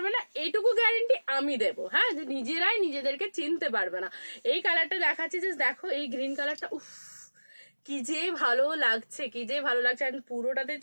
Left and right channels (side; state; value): both; inverted; correlation -1.00